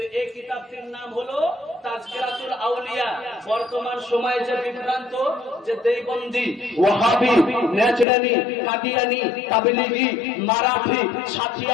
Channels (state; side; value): drops out; right; at 8.1 s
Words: এই কিতাবটির নাম হলো তাজকিরাতুল আউলিয়া। বর্তমান সময়ে যে বিভ্রান্ত, যে দেওবন্দি, ওয়াহাবি, নেচরানি, কাদিয়ানি, তাবলিগি, মারাঠি,